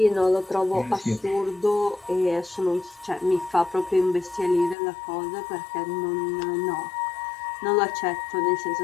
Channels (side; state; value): right; drops out; at 4.8 s